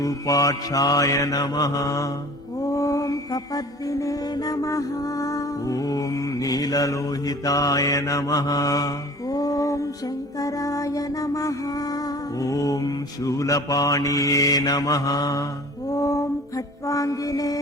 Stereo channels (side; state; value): both; normal; correlation 0.45